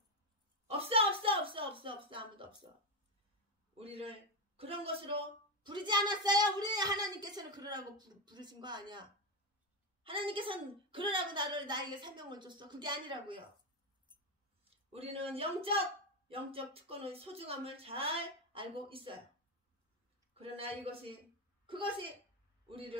없어. 아무도 없어. 우리를 그런 것으로 부르지 않았어요. 우리 하나님께서는 그러라고 부르신 거 아니야. 하나님께서는 그러라고 나에게 사명을 줬어. 그게 아니라고요. 우리는 영적 특권의 소중함을 잘 알고 있어요. 그러나 그것이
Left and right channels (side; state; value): both; normal; correlation 0.10